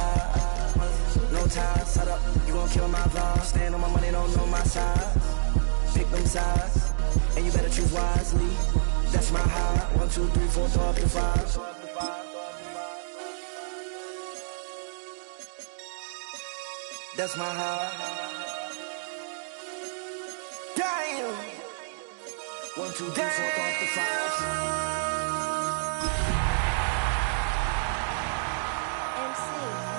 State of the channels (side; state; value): left; silent; 60 dB below the other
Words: No time, set up. You gon' kill my vibe. Stand on my money, don't know my size. Pick them sides, and you better choose wisely. That's my high. 1, 2, 3, 4, throw up to 5. That's my high. Damn. 1, 2, 3, 4, throw up to 5. MC,